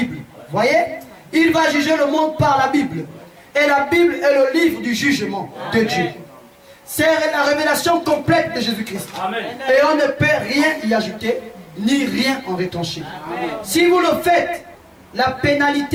Voyez? Il va juger le monde par la Bible. Et la Bible est le livre du jugement de Dieu. C'est la révélation complète de Jésus-Christ. Et on ne peut rien y ajouter, ni rien en retrancher. Si vous le faites, la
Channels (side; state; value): both; identical; correlation 1.00